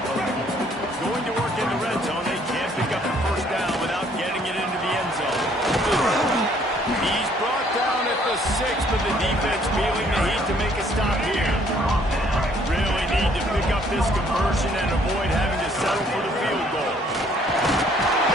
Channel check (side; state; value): both; normal; correlation 0.62